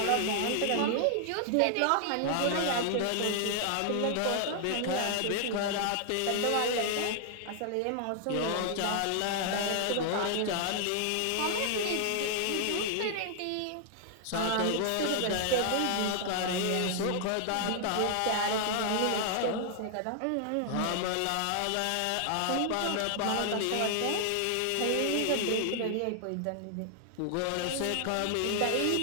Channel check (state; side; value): different; both; correlation 0.00